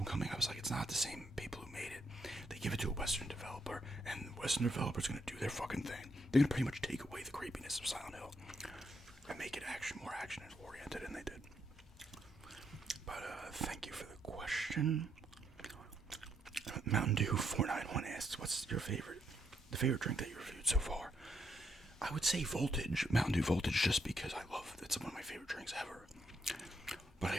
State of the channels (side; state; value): both; normal; correlation 0.76